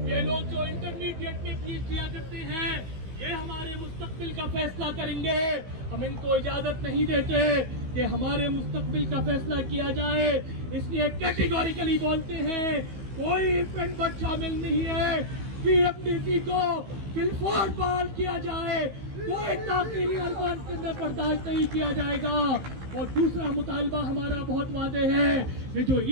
ये लोग जो इंटरमीडिएट में PhD करते हैं, ये हमारे मुस्तकबिल का फैसला करेंगे। हम इनको इजाजत नहीं देते कि हमारे मुस्तकबिल का फैसला किया जाए, इसलिए कैटेगोरिकली बोलते हैं कोई इवेंट बट शामिल नहीं है। PMDC को बिल्कुल बहाल किया जाए, कोई ताकीरी अरबान के अंदर बर्दाश्त नहीं किया जाएगा। और दूसरा मुतालबा हमारा बहुत वादे है, ये जो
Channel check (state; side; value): late; left; 15 ms